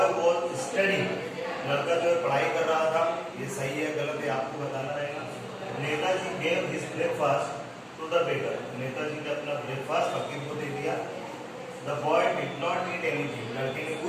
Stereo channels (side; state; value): both; identical; correlation 1.00